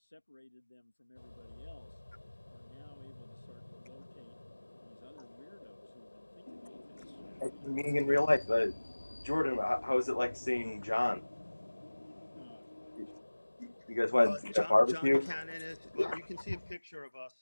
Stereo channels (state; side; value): inverted; both; correlation -1.00